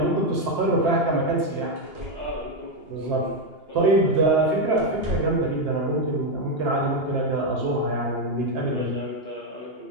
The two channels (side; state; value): left; late; 2.8 ms